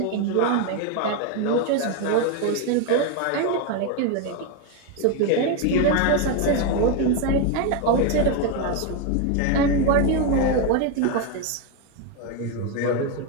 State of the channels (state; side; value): different; both; correlation 0.02